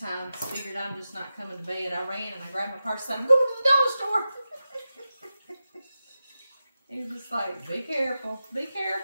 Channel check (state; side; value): inverted; both; correlation -0.93